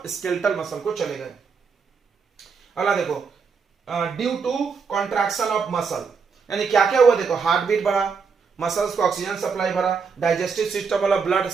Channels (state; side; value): quieter; left; 5.6 dB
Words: स्केलेटल मसल को चले गए। अगला देखो, due to contraction of muscle, यानी क्या क्या हुआ, देखो हार्ट बीट बढ़ा, मसल्स को ऑक्सीजन सप्लाई भरा, डाइजेस्टिव सिस्टम वाला ब्लड